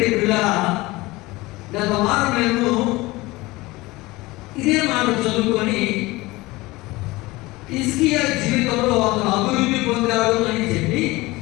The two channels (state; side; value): quieter; right; 20.9 dB